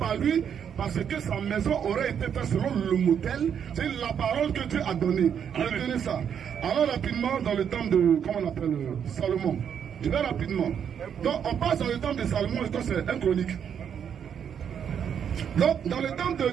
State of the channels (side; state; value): left; quieter; 8.1 dB